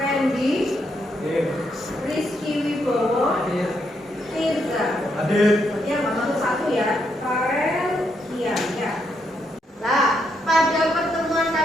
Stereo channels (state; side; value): normal; both; correlation 0.78